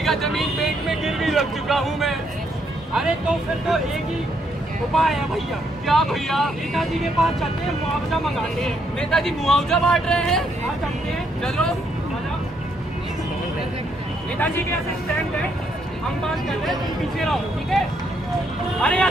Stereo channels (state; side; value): normal; both; correlation 0.74